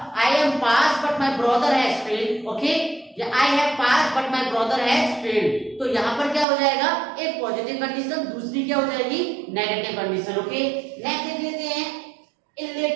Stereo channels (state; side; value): drops out; left; at 6.5 s